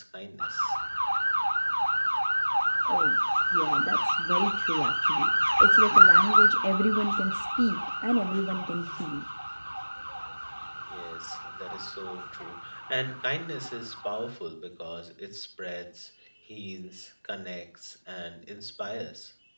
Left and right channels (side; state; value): both; inverted; correlation -1.00